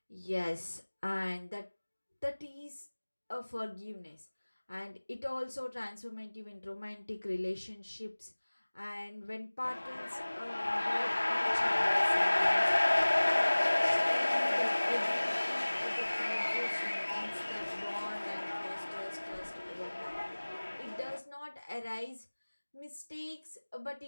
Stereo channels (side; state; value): both; inverted; correlation -1.00